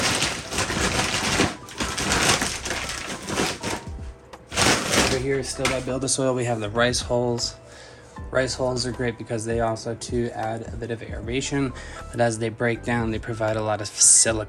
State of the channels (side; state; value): both; identical; correlation 1.00